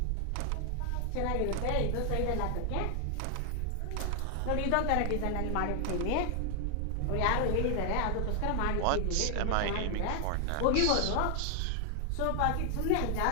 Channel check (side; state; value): both; different; correlation 0.00